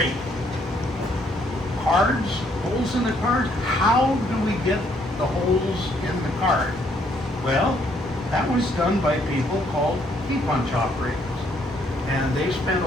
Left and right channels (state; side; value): normal; both; correlation 0.69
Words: Cards, holes in the cards. How do we get the holes in the card? Well, That was done by people called key punch operators. And they spent